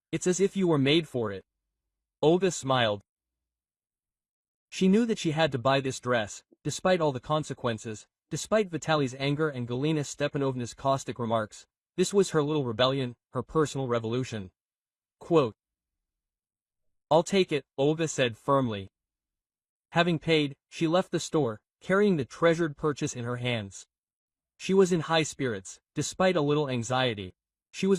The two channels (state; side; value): identical; both; correlation 1.00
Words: "It's as if you were made for it." Olga smiled. She knew that she had to buy this dress, despite all the consequences, despite Vitaly's anger and Galina Stepanovna's caustic remarks. This was her little rebellion, her personal revolution. Quote, "I'll take it," Olga said firmly. Having paid, she left the store, carrying the treasured purchase in her hands. She was in high spirits, despite a little anxiety. She